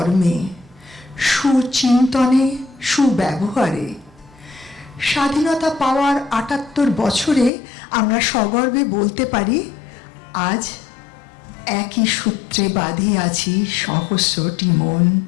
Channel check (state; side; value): drops out; right; at 7.5 s